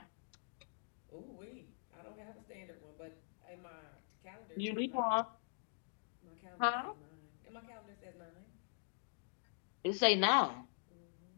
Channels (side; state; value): right; silent; digital silence